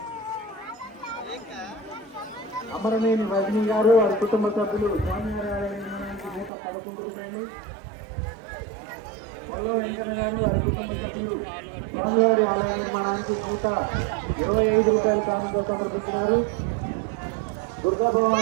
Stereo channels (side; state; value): left; drops out; at 6.5 s